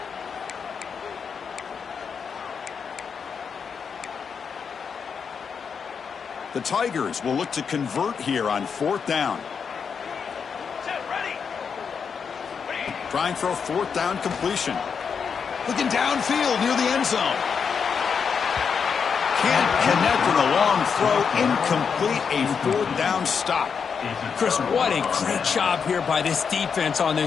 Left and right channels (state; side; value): quieter; right; 6.3 dB